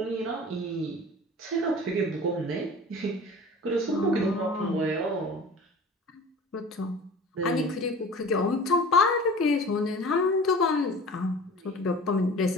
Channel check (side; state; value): both; normal; correlation 0.40